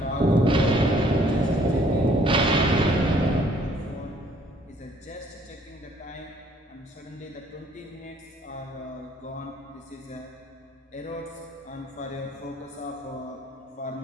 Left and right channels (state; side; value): normal; both; correlation 0.61